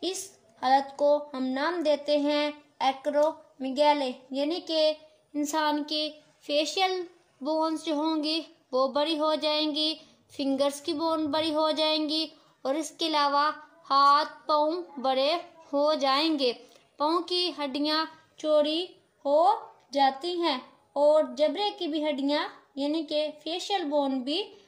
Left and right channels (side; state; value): both; identical; correlation 1.00